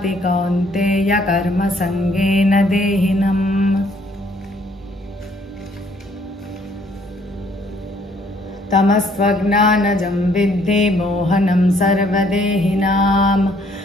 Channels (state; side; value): normal; both; correlation 0.64